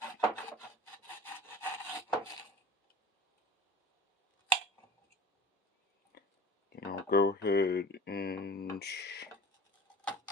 And I'll go ahead and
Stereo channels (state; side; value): normal; both; correlation 0.39